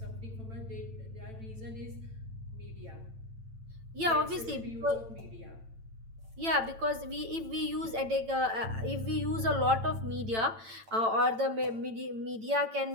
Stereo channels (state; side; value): late; left; 9.0 ms